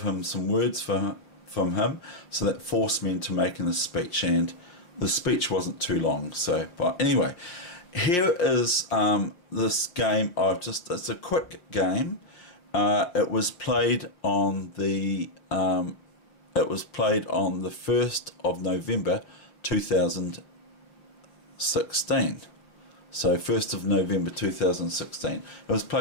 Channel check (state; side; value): late; right; 5.7 ms